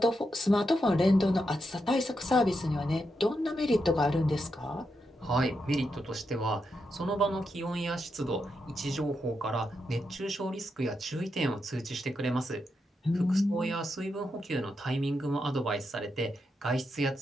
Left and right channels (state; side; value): normal; both; correlation 0.84